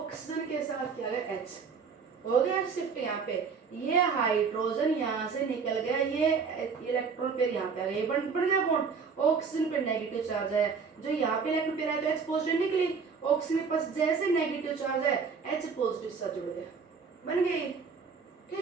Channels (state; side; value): quieter; left; 5.6 dB